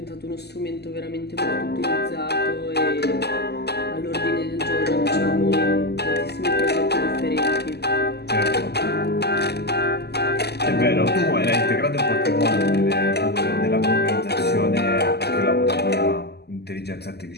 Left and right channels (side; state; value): right; late; 0.48 ms